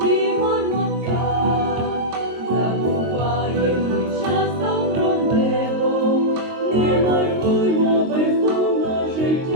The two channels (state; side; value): late; left; 22 ms